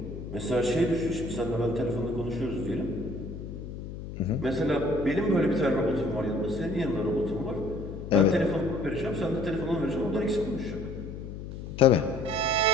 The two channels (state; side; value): noise; left; hum, 9 dB below the sound